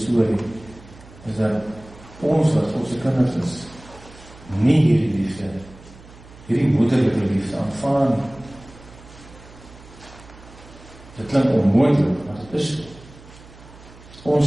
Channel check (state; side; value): noise; right; hum, 21 dB below the sound